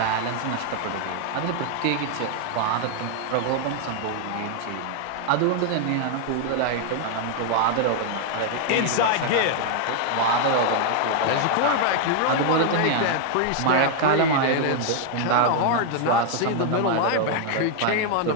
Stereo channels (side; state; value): both; different; correlation 0.00